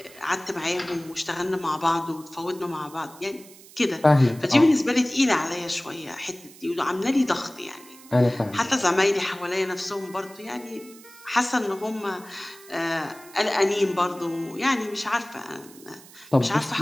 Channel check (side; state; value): right; noise; hiss, 21 dB below the sound